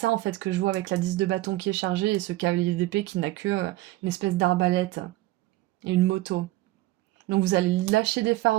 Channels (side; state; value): left; quieter; 17.7 dB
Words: en fait que je vois avec la 10 de bâton qui est chargée et ce cavalier d'épée qui n'a que une espèce d'arbalète et une moto. Donc vous allez lâcher des